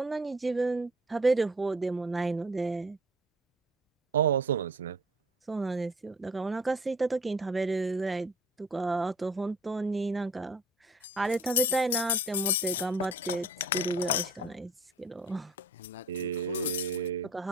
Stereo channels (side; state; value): both; normal; correlation 0.49